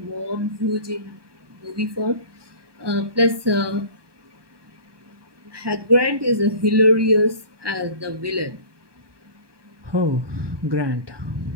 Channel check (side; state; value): left; late; 1.2 ms